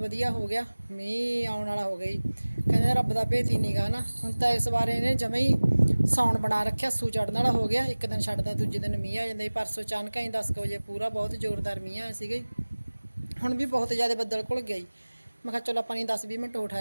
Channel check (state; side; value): inverted; both; correlation -1.00